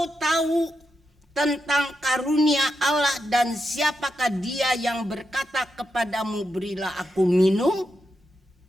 tahu tentang karunia Allah dan siapakah dia yang berkata kepadamu berilah aku minum,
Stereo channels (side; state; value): both; normal; correlation 0.86